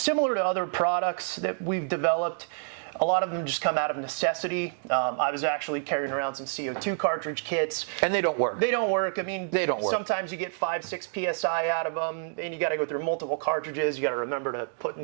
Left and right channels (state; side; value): silent; left; digital silence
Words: to other products that we've developed, a lot of them just come out of necessity. I was actually carrying around some CO2 cartridge kits. And they don't work. They don't work. I mean, they don't work. Sometimes you get 5-6 PSI out of them, and you got to go through multiple cartridges. You got to remember to put